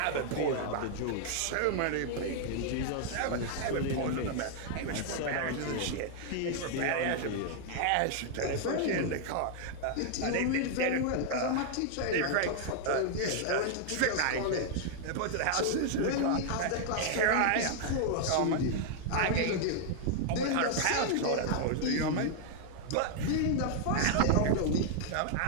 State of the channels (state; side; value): different; both; correlation 0.00